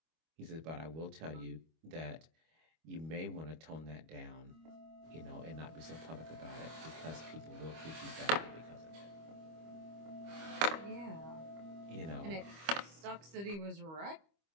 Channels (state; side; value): late; left; 25 ms